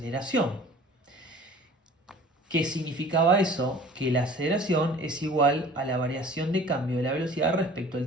¿Qué significaba eso? Que la aceleración es igual a la variación de cambio de la velocidad respecto al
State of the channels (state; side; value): normal; both; correlation 0.46